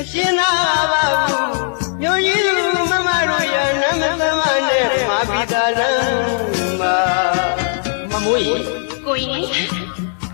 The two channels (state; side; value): silent; right; digital silence